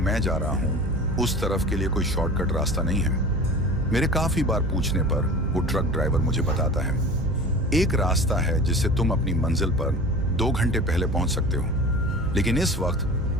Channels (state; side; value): noise; right; hum, 8 dB below the sound